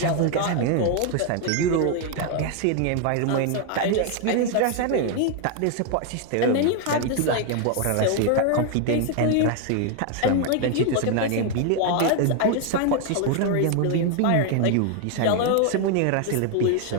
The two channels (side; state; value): both; different; correlation 0.00